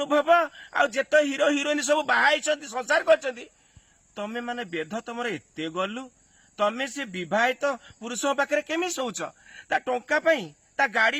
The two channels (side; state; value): both; identical; correlation 1.00